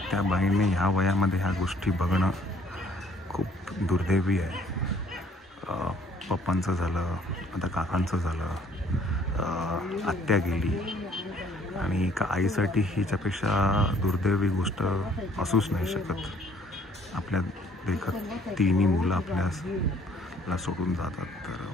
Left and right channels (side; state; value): both; normal; correlation 0.60